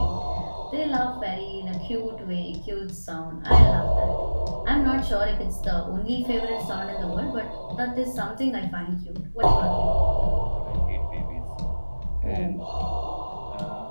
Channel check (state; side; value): inverted; both; correlation -1.00